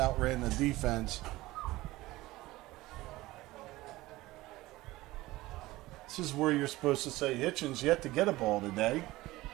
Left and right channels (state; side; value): quieter; left; 18.5 dB